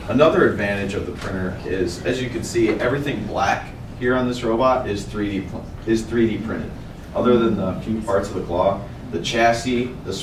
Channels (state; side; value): identical; both; correlation 1.00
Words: Another advantage of the printer is, as you can see, everything black here on this robot is 3D printed. Other than the few parts of the claw, the chassis, the